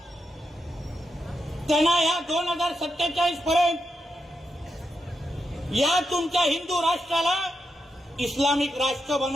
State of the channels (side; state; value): both; normal; correlation 0.85